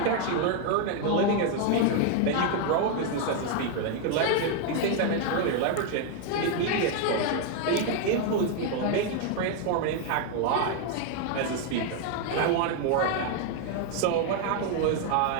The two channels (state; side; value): different; both; correlation 0.01